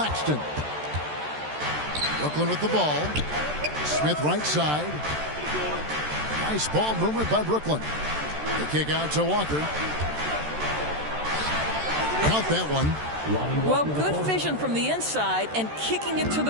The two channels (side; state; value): left; late; 13 ms